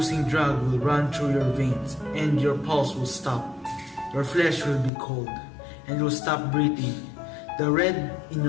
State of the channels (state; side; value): drops out; right; at 4.9 s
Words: drug will run through your veins, and your pulse will stop. Your flesh will be cold, and you'll stop breathing. The red in